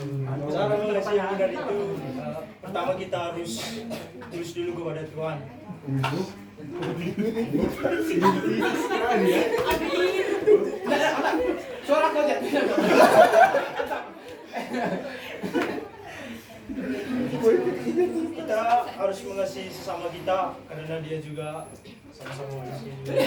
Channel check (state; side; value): identical; both; correlation 1.00